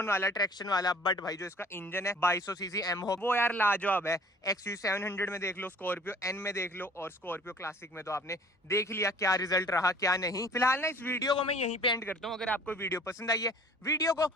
वाला, ट्रैक्शन वाला। बट भाई जो इसका इंजन है 2200 सीसी एमहो, वो यार लाजवाब है। XUV 700 में देख लो, स्कॉर्पियो N में देख लो, और स्कॉर्पियो क्लासिक में तो आपने देख लिया क्या रिजल्ट रहा क्या नहीं। फिलहाल ना इस वीडियो को मैं यहीं पे एंड करता हूँ। अगर आपको वीडियो पसंद आई है, वीडियो को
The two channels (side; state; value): both; normal; correlation 0.51